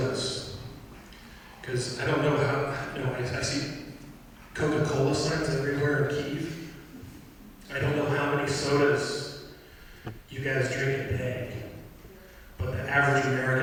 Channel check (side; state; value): both; identical; correlation 1.00